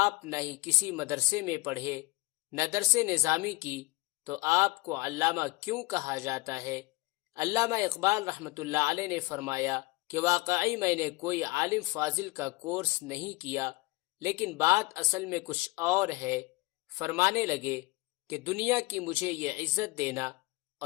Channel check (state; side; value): quieter; right; 22.4 dB